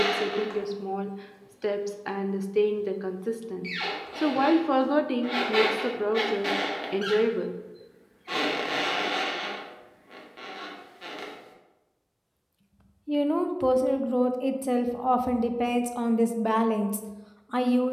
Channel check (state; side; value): identical; both; correlation 1.00